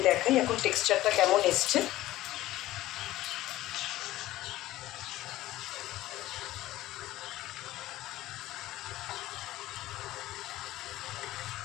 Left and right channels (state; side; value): quieter; right; 15.8 dB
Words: দেখাই এখন টেক্সচারটা কেমন এসছে।